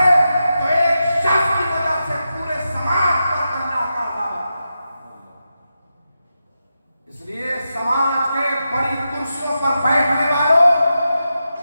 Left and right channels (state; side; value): inverted; both; correlation -0.89